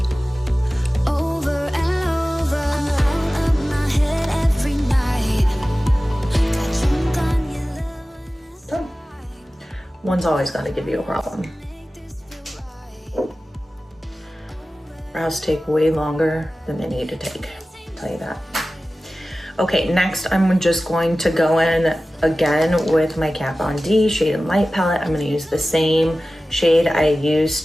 Done. One's always gonna give you a problem. Brows take way longer than they need to take, I'll tell you that. Okay, next I'm just going to go in again with my Kat Von D Shade and Light palette. I'm gonna use the same shade I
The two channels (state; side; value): normal; both; correlation 0.96